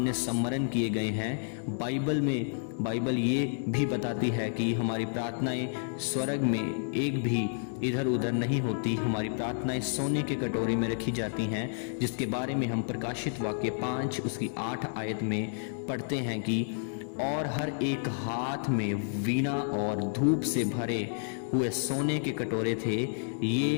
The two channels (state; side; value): silent; right; digital silence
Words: सम्मरण किए गए हैं। बाइबल ये भी बताती है कि हमारी प्रार्थनाएं स्वर्ग में एक भी इधर उधर नहीं होती। हमारी प्रार्थनाएं सोने के कटोरे में रखी जाती हैं, जिसके बारे में हम प्रकाशित वाक्य 5 उसकी 8 आयत में पढ़ते हैं कि और हर एक हाथ में वीणा और धूप से भरे हुए सोने के कटोरे थे।